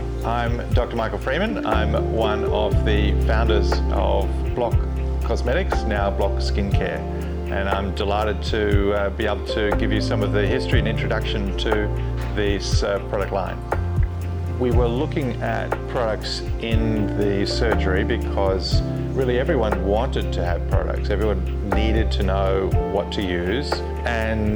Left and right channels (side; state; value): both; identical; correlation 1.00